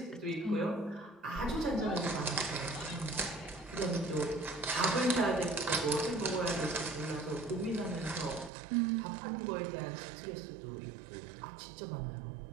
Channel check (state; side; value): drops out; left; at 8.5 s